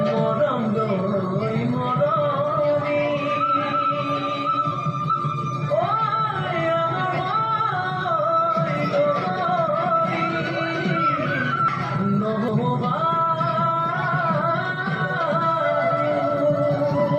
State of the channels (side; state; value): both; identical; correlation 1.00